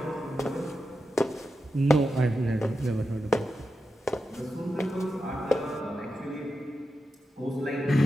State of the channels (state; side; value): normal; both; correlation 0.89